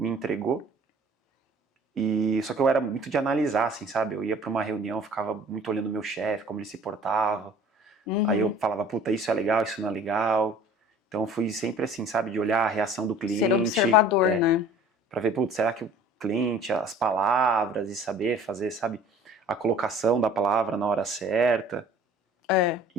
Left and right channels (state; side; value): normal; both; correlation 0.48